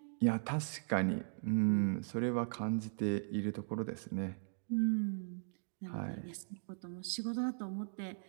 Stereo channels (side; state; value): left; silent; digital silence